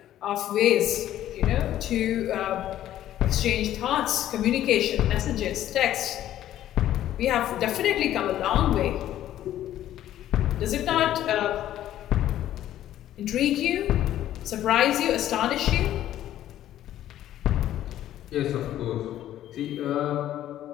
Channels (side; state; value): right; quieter; 12.5 dB